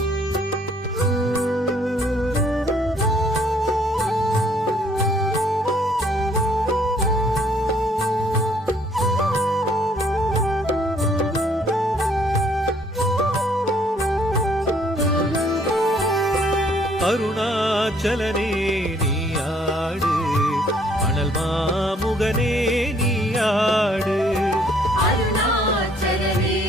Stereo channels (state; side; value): normal; both; correlation 0.63